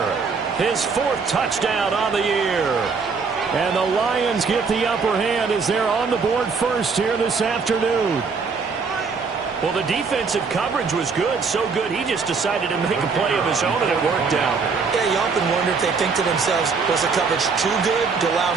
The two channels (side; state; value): left; quieter; 5.0 dB